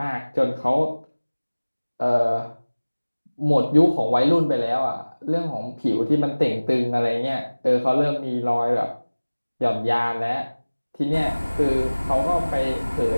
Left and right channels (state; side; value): inverted; both; correlation -1.00